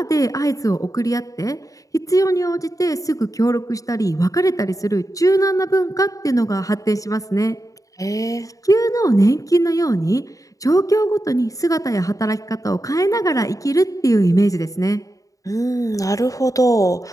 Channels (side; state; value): right; late; 0.16 ms